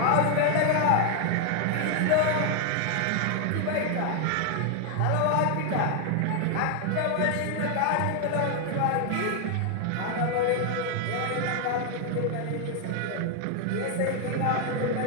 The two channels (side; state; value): both; different; correlation 0.00